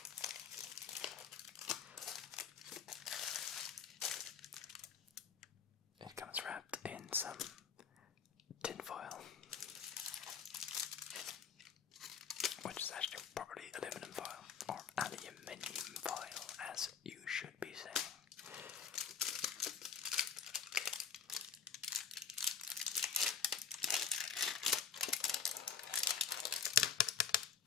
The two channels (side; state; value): right; quieter; 6.8 dB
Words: It comes wrapped in some tin foil, which is actually probably aluminum foil, or aluminium foil, as you should be saying.